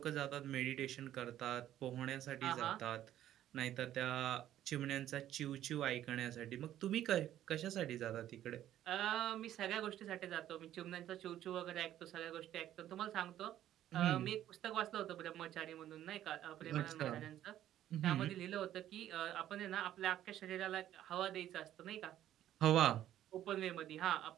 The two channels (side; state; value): left; quieter; 12.2 dB